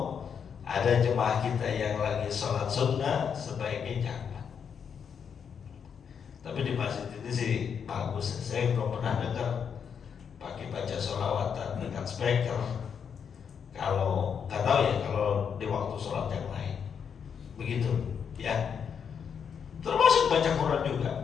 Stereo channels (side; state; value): right; quieter; 7.2 dB